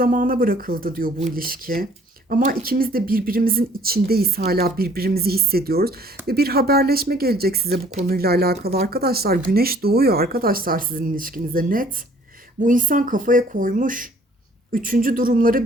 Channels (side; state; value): both; normal; correlation 0.57